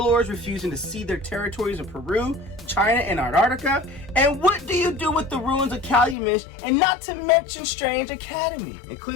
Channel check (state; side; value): drops out; right; at 6.2 s